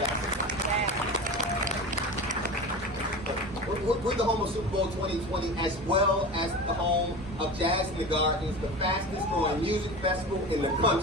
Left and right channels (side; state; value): both; normal; correlation 0.31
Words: We're the home of Super Bowl 2020, as well as the home of Jazz in the Gardens, the fastest growing music festival in the